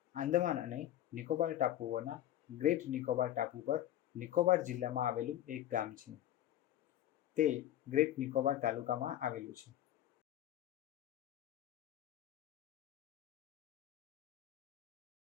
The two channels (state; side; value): quieter; right; 12.5 dB